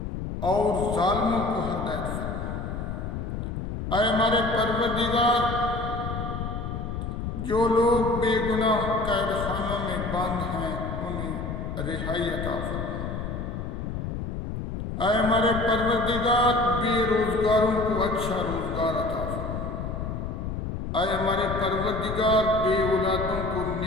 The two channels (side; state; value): left; noise; rumble, 5 dB below the sound